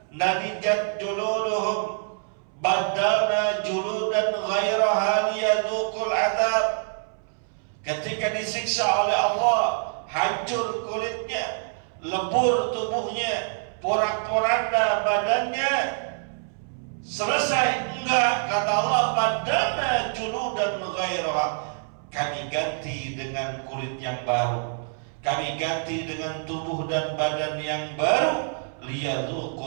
nadijat juluduhum badalna juludan ghairaha liyadzuqul adzab. Ketika disiksa oleh Allah, hancur kulitnya, lebur tubuhnya, porak-poranda badannya, selesai. Enggak, kata Allah, badana juludan ghairaha, kami ganti dengan kulit yang baru, kami ganti dengan tubuh dan badan yang baru,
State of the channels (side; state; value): left; silent; 61 dB below the other